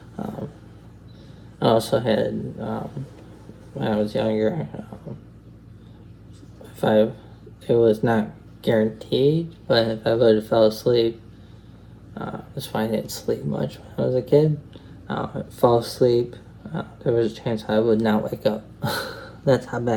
I also had, when I was younger, it was not guaranteed, but if I would have fell asleep, that's why I didn't sleep much when I was a kid. I'd fall asleep, there was a chance I would not wake up. That's how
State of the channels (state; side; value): identical; both; correlation 1.00